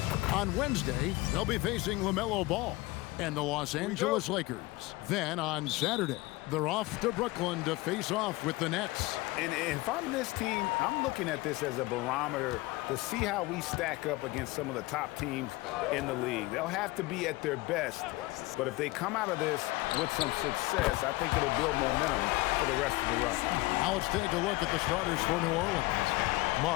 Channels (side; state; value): right; quieter; 21.0 dB